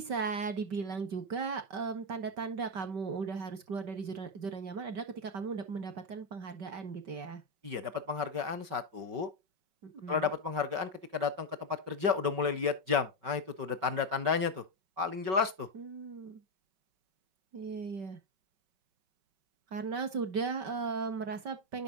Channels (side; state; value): left; late; 5.3 ms